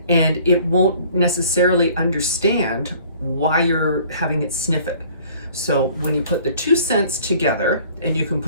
and it won't necessarily understand why you're having it sniff it. So when you put the two scents together, and you can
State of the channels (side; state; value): both; inverted; correlation -0.53